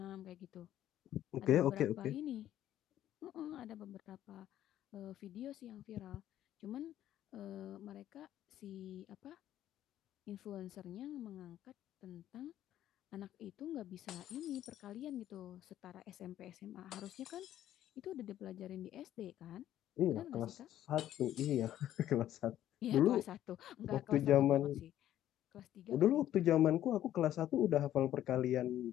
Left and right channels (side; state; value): right; quieter; 12.2 dB